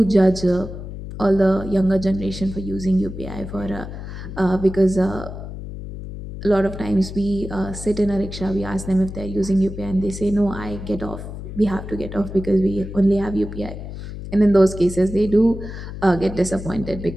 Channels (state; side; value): noise; left; hum, 10 dB below the sound